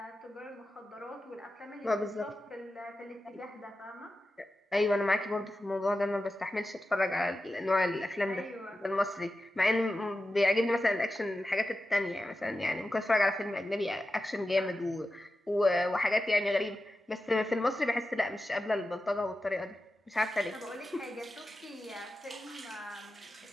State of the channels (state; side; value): normal; both; correlation 0.92